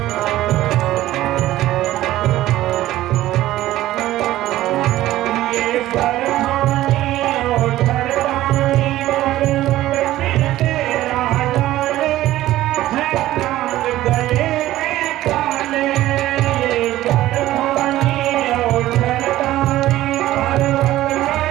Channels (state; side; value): quieter; left; 15.0 dB